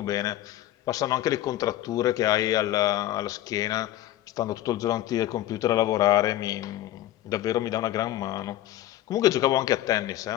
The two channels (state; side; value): quieter; right; 14.0 dB